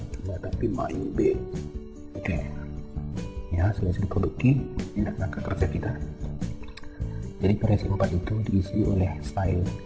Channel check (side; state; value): both; identical; correlation 1.00